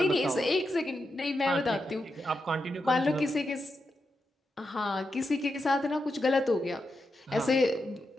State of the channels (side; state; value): both; normal; correlation 0.87